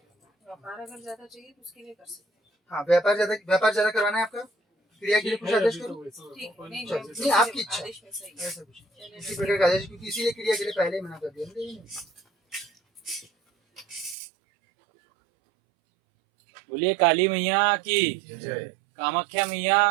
अगर ज्यादा चाहिए तो उसके लिए कर सकते हैं। हाँ, व्यापार ज्यादा करवाना है आपका, क्रिया के लिए कुछ आदेश करो। ठीक, नहीं नहीं, आपकी इच्छा, आदेश में सही है। ऐसा कुछ इसी प्रकार का आदेश, क्योंकि इसीलिए क्रिया के लिए पहले ही मना कर दिया। बोलिए काली मैया की, कामाख्या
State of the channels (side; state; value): left; drops out; at 14.2 s